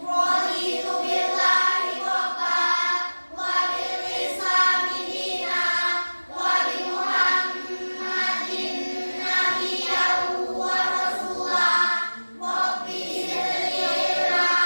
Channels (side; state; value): both; inverted; correlation -1.00